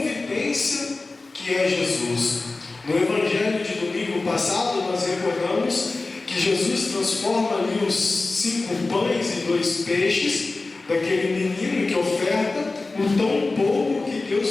que é Jesus. No Evangelho de domingo passado nós recordamos que Jesus transforma ali os 5 pães e 2 peixes daquele menino que oferta o tão pouco que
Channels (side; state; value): right; quieter; 3.5 dB